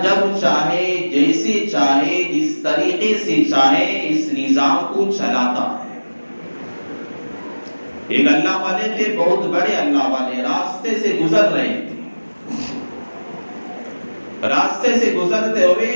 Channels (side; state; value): both; inverted; correlation -1.00